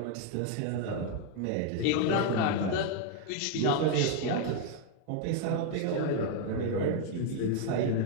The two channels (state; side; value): different; both; correlation 0.01